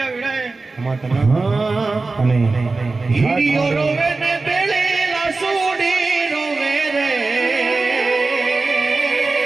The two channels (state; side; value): quieter; left; 3.7 dB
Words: વેળાએ હીરીઓ રોવે ને બેળેલા સોડી રોવે રે